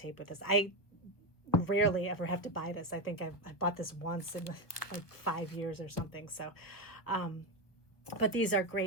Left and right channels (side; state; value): right; late; 1.4 ms